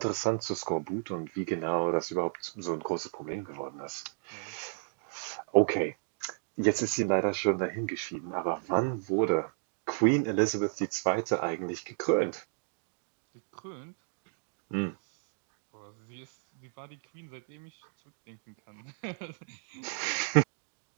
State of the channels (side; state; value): left; silent; digital silence